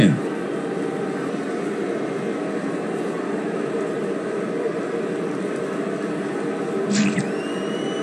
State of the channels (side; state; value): both; identical; correlation 1.00